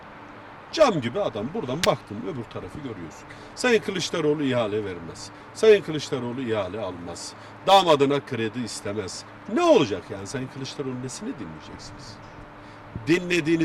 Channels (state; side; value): identical; both; correlation 1.00